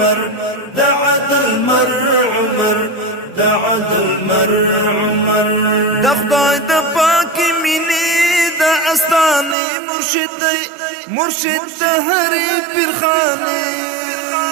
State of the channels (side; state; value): left; drops out; at 9.6 s